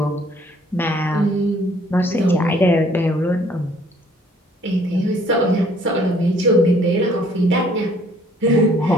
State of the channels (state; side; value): normal; both; correlation 0.60